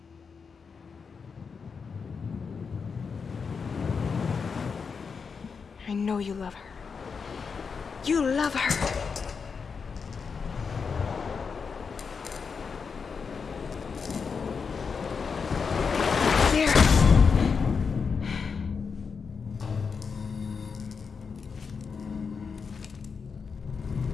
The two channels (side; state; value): right; quieter; 5.6 dB